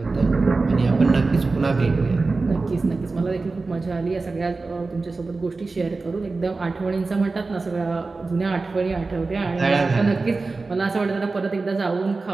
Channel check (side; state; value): left; quieter; 3.8 dB